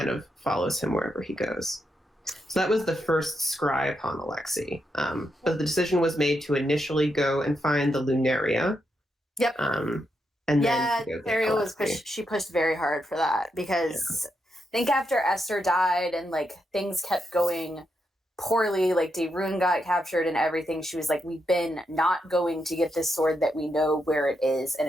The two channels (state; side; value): normal; both; correlation 0.83